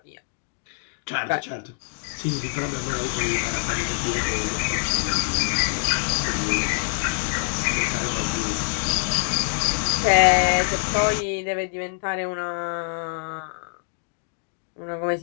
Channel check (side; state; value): right; silent; digital silence